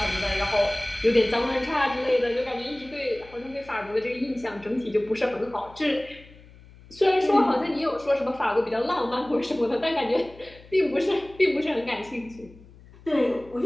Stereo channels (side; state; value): left; noise; hum, 23 dB below the sound